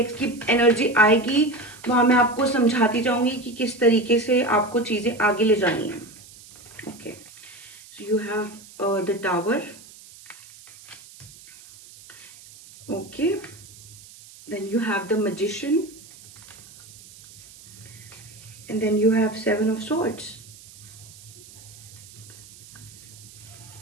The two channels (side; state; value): right; noise; hiss, 20 dB below the sound